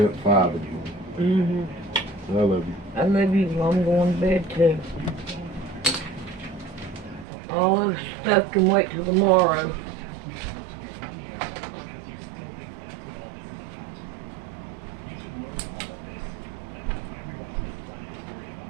5 of you. I love you. I love you. I'm going to bed too. All this stuff can wait till tomorrow.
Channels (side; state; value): left; drops out; at 7.2 s